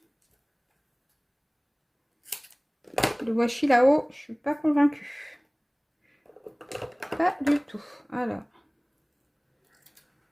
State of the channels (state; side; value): identical; both; correlation 1.00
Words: Le washi là-haut, je suis pas convaincue. Pas du tout. Alors.